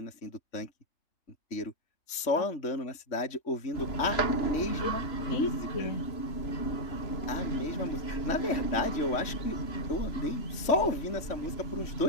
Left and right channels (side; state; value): right; late; 3.5 ms